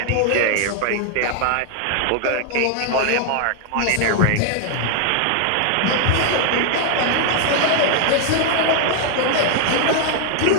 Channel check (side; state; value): both; different; correlation 0.00